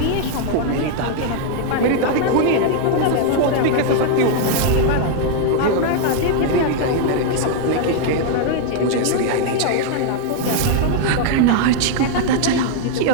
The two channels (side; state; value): both; different; correlation -0.01